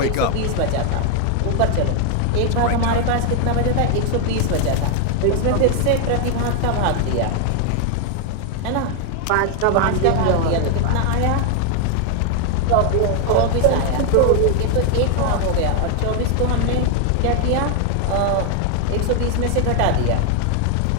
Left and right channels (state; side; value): different; both; correlation 0.00